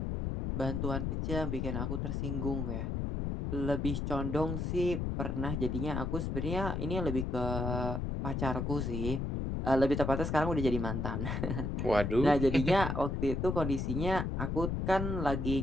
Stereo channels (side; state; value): left; noise; rumble, 1 dB below the sound